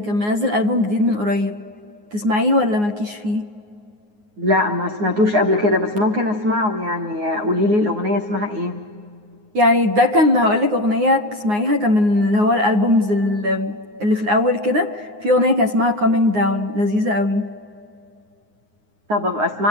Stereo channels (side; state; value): left; late; 9.6 ms